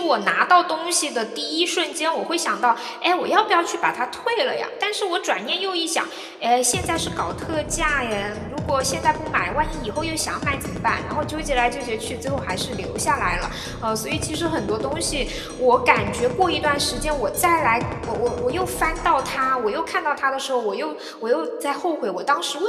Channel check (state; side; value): identical; both; correlation 1.00